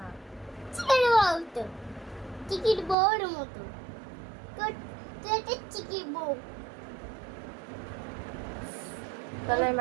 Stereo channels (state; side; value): drops out; left; at 3.0 s